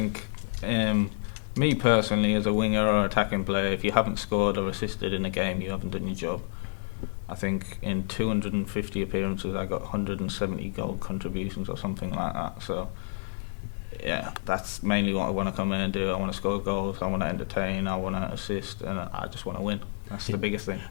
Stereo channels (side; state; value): right; silent; 55 dB below the other